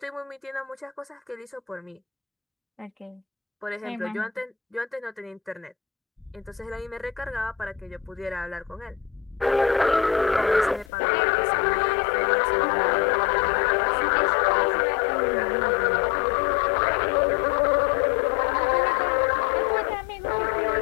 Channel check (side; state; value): right; drops out; at 10.9 s